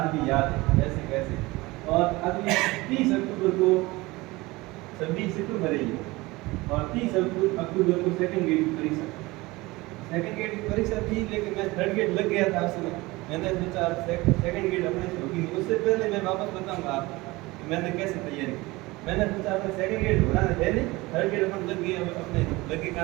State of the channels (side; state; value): left; quieter; 21.6 dB